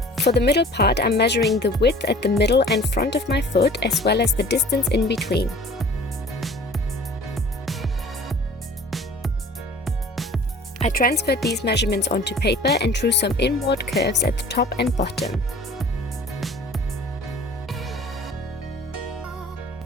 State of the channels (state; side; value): normal; both; correlation 0.47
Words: For the middle part, I'm measuring the width at the middle and front of my foot as well as the distance in between. I transferred these measurements onto paper and drew some inward curves at the top and bottom.